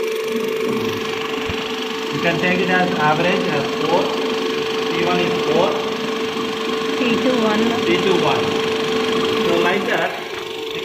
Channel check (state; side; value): identical; both; correlation 1.00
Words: You can take it as average as 4. T1 is 4. T2 1. T2 1. So like that, you